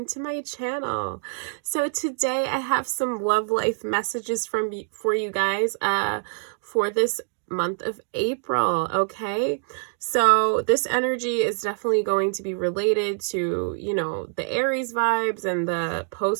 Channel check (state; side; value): silent; left; digital silence